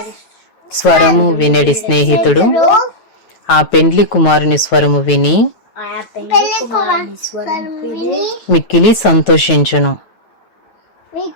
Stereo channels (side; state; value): right; late; 9.2 ms